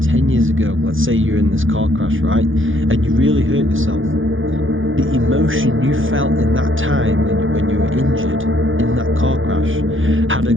10 years ago. Let's say you're in this car crash, right? And you really hurt yourself. The emotion you felt in that time when you were injured in that car crash had a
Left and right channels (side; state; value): left; late; 0.58 ms